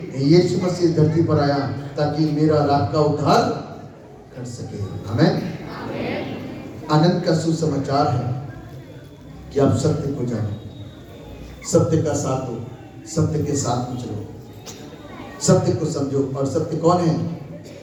यीशु मसीह धरती पर आया ताकि मेरा और आपका उद्धार कर सके। आमीन। आनंद का सुसमाचार है कि आप सत्य को जानो, सत्य का साथ दो, सत्य के साथ में चलो, सत्य को समझो। और सत्य कौन है?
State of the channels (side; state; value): both; identical; correlation 1.00